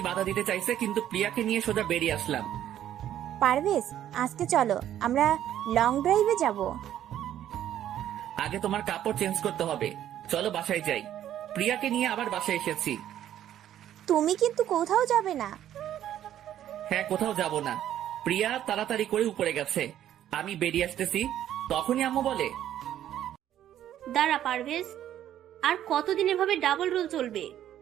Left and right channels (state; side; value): quieter; left; 11.4 dB